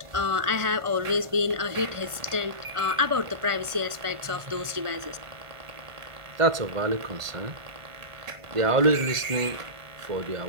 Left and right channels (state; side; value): late; left; 1.5 ms